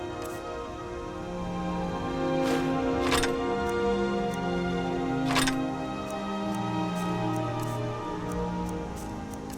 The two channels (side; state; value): both; identical; correlation 1.00